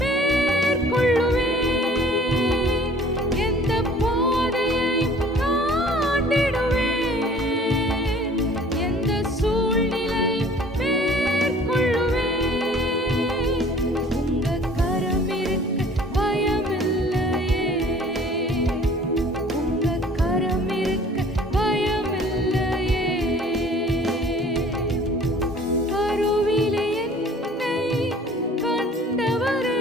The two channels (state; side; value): normal; both; correlation 0.50